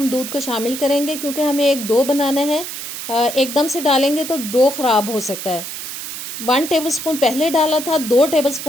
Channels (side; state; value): right; noise; hiss, 8 dB below the sound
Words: दूध को शामिल करेंगे, क्योंकि हमें एक डो बनाना है। एकदम से डालेंगे तो डो ख़राब हो सकता है। 1 टेबलस्पून पहले डाला था, 2